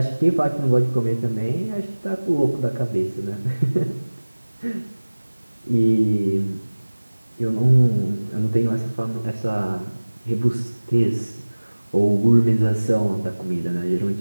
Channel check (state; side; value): inverted; both; correlation -1.00